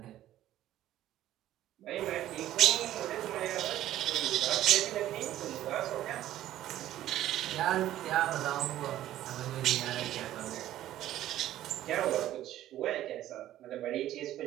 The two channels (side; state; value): left; quieter; 13.3 dB